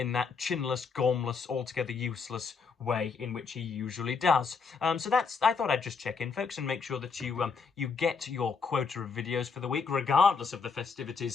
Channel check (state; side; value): quieter; right; 5.3 dB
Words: that chinless, gormless, altogether useless way in which he usually does. So I thought I'd just check in, folks, and make sure that you get your quota of videos for the week, regardless of the